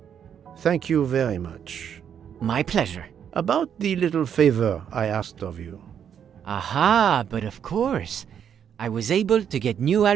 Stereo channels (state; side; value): quieter; left; 8.5 dB